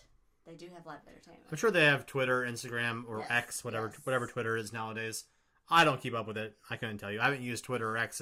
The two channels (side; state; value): both; identical; correlation 1.00